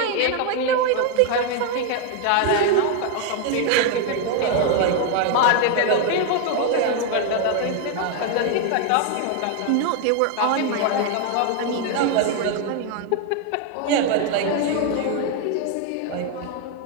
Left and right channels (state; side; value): different; both; correlation 0.00